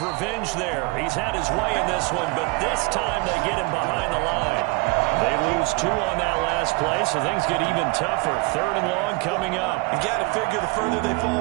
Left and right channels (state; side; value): quieter; left; 26.7 dB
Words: revenge there. He's had his way in this one, but this time they get him behind the line. They lose 2 on that last play, so things get even tougher. 3rd and long coming up. You got to figure the further they fall